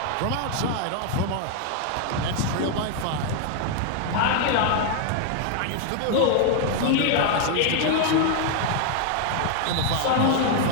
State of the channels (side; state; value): both; different; correlation 0.00